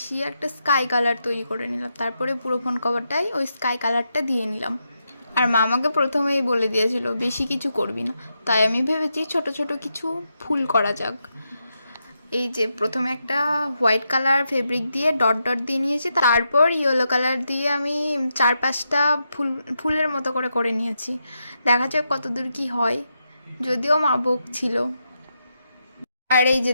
একটা স্কাই কালার তৈরি করে নিলাম। তারপরে পুরো ফোন কভারটাই ওই স্কাই কালারটা দিয়ে নিলাম। আর মা আমাকে প্রথমেই বলে দিয়েছিল বেশি কিছু করবি না, তাই আমি ভেবেছি ছোট ছোট কিছু ফুল করা যাক। এই যে প্রথমে একটা হোয়াইট কালার ফেব্রিক দিয়ে ডট ডট দিয়ে নিয়েছি, তারপর ইয়েলো কালার দিয়ে আমি 4-5টা ফুলের মতো করে করে নিয়েছি। দেখা যাক কতদূর কি হয়, যদিও মা বকছিল। আর এই যে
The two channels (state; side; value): inverted; both; correlation -0.84